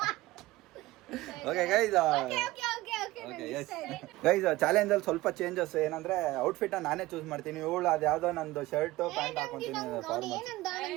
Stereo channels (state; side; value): quieter; left; 18.4 dB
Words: ಓಕೆ ಗೈಸ್, ಚಾಲೆಂಜ್ ಅಲ್ಲಿ ಸ್ವಲ್ಪ ಚೇಂಜಸ್ ಏನಂದ್ರೆ ಔಟ್ಫಿಟ್ ನಾನೇ ಚೂಸ್ ಮಾಡ್ತೀನಿ. ಇವಳು ಅದು ಯಾವ್ದೋ ನಂದು ಶರ್ಟ್ ಪ್ಯಾಂಟ್ ಹಾಕೊಂತೀನಿ.